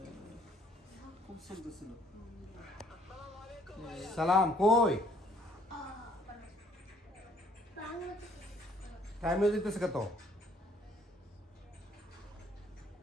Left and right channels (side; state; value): both; normal; correlation 0.62